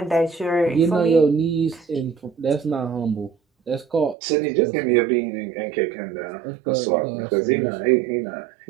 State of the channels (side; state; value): left; drops out; at 4.2 s